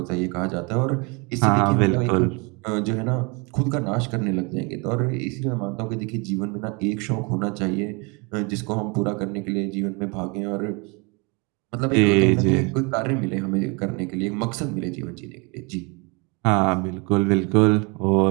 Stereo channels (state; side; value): quieter; left; 30.3 dB